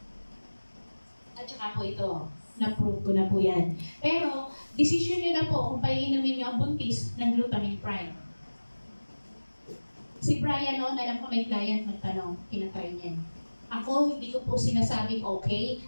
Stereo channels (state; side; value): inverted; both; correlation -1.00